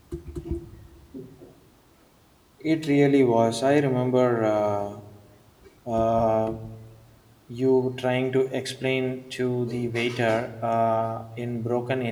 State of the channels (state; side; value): identical; both; correlation 1.00